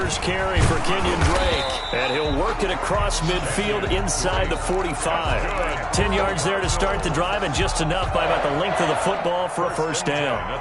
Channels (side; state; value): both; identical; correlation 1.00